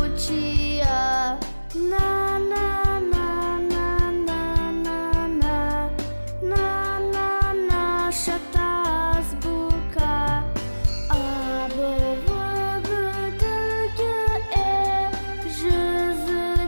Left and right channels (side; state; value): both; inverted; correlation -1.00